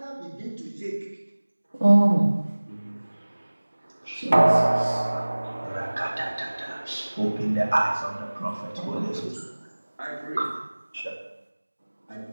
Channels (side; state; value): both; inverted; correlation -1.00